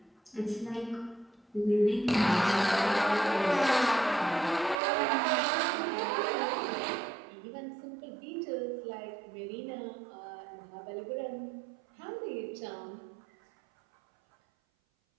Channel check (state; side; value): drops out; left; at 4.8 s